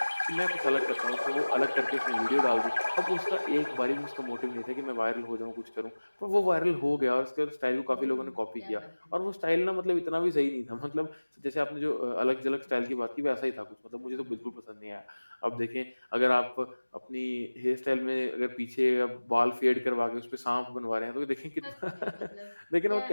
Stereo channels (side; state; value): both; inverted; correlation -1.00